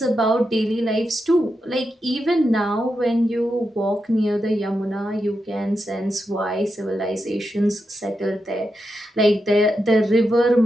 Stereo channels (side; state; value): both; normal; correlation 0.87